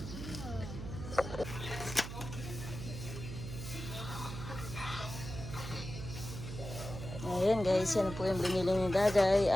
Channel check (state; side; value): noise; right; hum, 8 dB below the sound